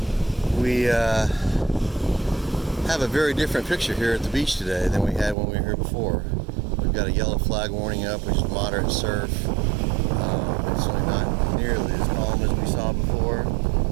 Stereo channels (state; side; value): drops out; left; at 5.4 s